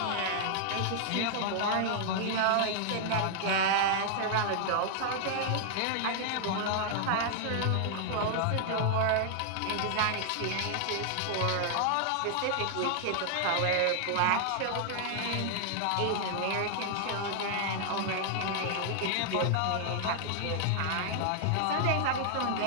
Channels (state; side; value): different; both; correlation 0.00